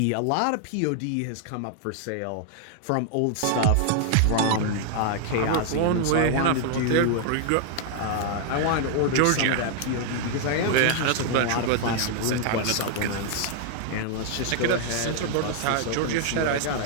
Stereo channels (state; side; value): different; both; correlation 0.00